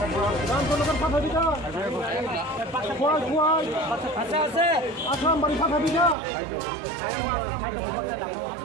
ভাজিটা খোয়াই আসাম বাড়ি ভাজিটা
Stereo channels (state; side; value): drops out; left; at 6.2 s